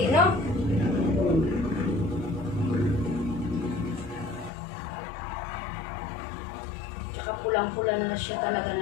no? Tsaka pulang-pula na siya talaga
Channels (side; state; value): right; drops out; at 4.5 s